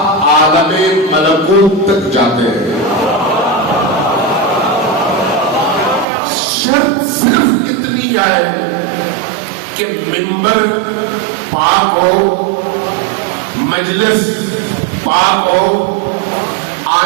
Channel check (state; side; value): drops out; left; at 6.1 s